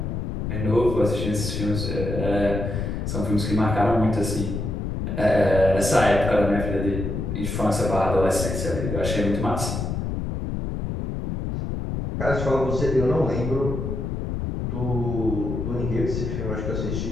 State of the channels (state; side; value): noise; left; rumble, 3 dB below the sound